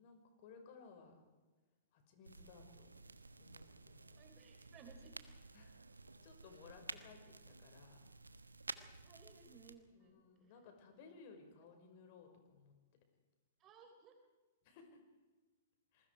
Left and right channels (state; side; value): inverted; both; correlation -0.74